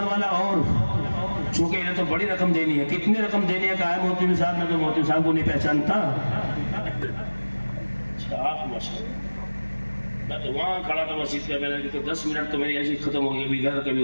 والا؟ اور چونکہ انہیں تو بڑی رقم دینی ہے. کتنی رقم دینی ہے؟ کہا ہے مولوی صاحب. میں تو مولوی صاحب کو نہیں پہچانتا. میں تو وہاں کھڑا تھا مسجد پہ, میں نے کہا 10 منٹ تو میری ایسی ختم ہو گئی, کبھی ادھر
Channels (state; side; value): inverted; both; correlation -1.00